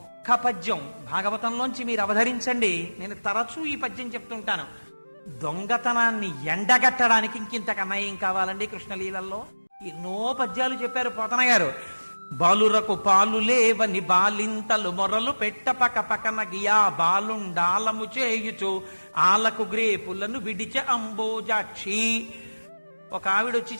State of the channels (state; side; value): inverted; both; correlation -1.00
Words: పద్యం భాగవతంలోంచి మీరు అవధరించండి, నేను తరచూ ఈ పద్యం చెప్తుంటాను. దొంగతనాన్ని ఎండగట్టడానికి ఇంకింతకన్నా ఏం కావాలండి కృష్ణలీలల్లో? ఎన్నో పద్యాలు చెప్పారు పోతన గారు. బాలురకు పాలు లేవని బాలింతలు మొరలు పెట్ట పక పకన గియా బాలుండాలము చేయుచు ఆలకు గ్రేపులను విడిచ అంబోజాక్షి. ఒక ఆవిడొచ్చి